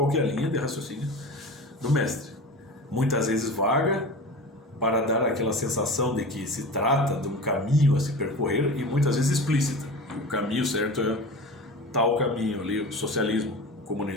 que é a linha de raciocínio do mestre. Muitas vezes vaga, para dar aquela sensação de que se trata de um caminho a se percorrer, e muitas vezes explícita. O caminho certo é tal caminho ali, o socialismo, o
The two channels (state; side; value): normal; both; correlation 0.32